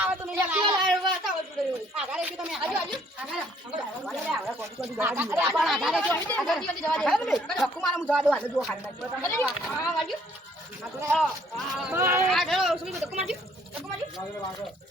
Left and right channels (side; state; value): both; normal; correlation 0.63